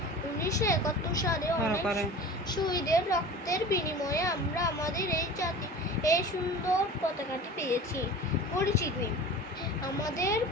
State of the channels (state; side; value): normal; both; correlation 0.37